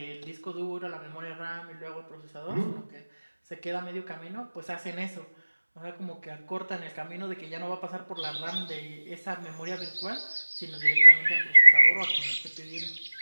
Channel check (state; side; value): inverted; both; correlation -1.00